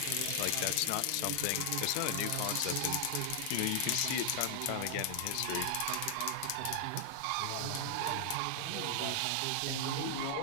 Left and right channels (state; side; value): different; both; correlation 0.00